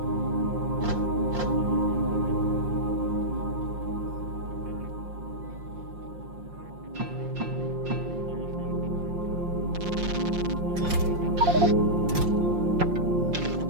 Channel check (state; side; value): late; left; 5.6 ms